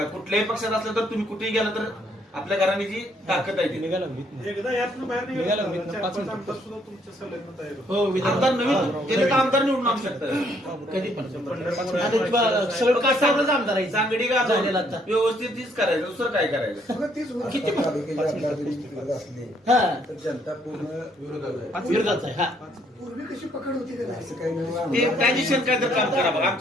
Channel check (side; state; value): both; normal; correlation 0.68